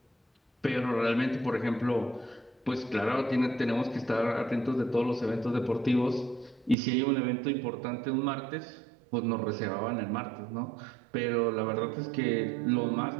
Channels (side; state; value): left; drops out; at 6.8 s